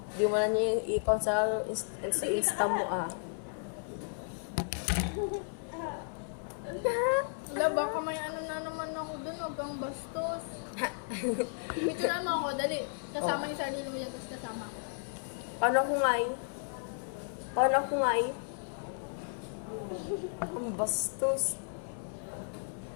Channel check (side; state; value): right; silent; 55 dB below the other